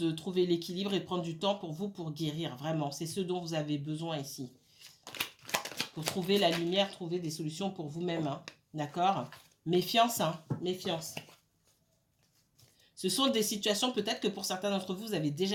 trouver l'équilibre et prendre du temps pour vous pour guérir. Vraiment, c'est ce dont vous avez besoin ici. Pour trouver la lumière, trouver des solutions pour vous-même. Hein. D'accord? Méfiance, hein, méfiance. Ce sont des situations, peut-être que pour certains d'entre vous, vous avez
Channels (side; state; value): both; identical; correlation 1.00